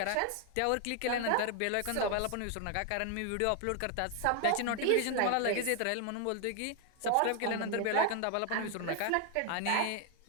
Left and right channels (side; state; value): both; different; correlation 0.00